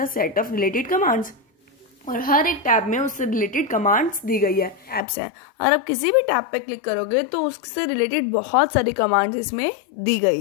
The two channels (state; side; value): drops out; right; at 5.0 s